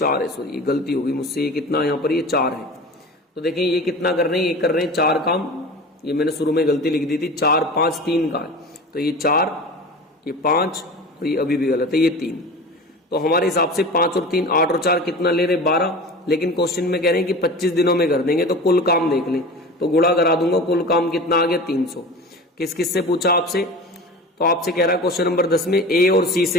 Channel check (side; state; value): both; normal; correlation 0.34